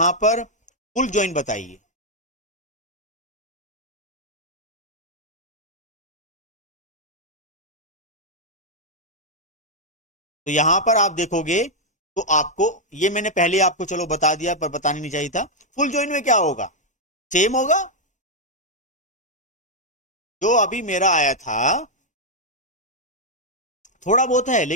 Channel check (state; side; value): normal; both; correlation -0.02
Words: पर फुल जॉइन बताइए। तो यहां पर आप देखोगे तो आपको, ये मैंने पहले आपको चलो बता दिया पर बताना नहीं चाहिए था, फुल जॉइन में क्या होगा, सेम होगा जो अभी मेरा आया था, थोड़ा बहुत है